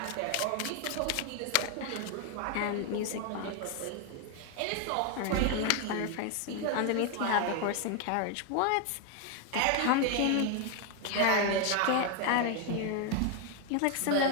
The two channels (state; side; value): different; both; correlation 0.01